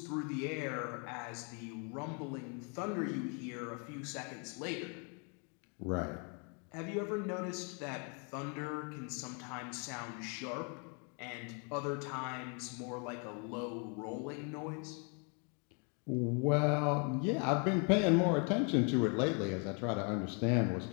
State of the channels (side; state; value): right; quieter; 37.0 dB